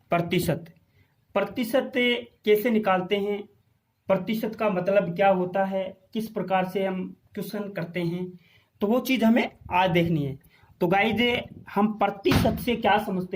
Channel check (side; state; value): both; identical; correlation 1.00